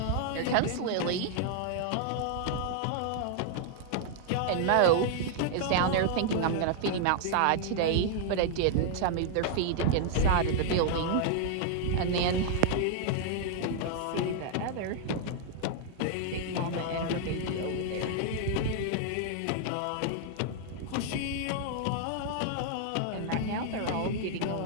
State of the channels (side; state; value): both; different; correlation 0.00